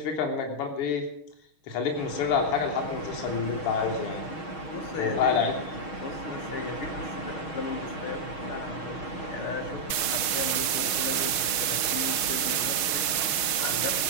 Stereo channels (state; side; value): late; right; 5.6 ms